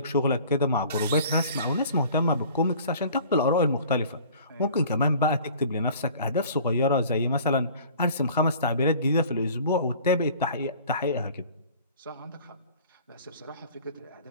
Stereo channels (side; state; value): both; inverted; correlation -0.48